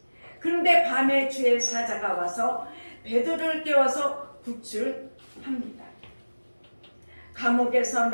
그런데 밤에 주의 사자가 와서 베드로를 깨워서 구출합니다. 감옥에서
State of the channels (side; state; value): both; inverted; correlation -1.00